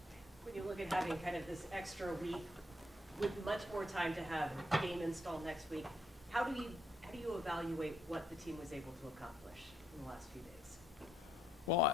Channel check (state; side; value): normal; both; correlation 0.74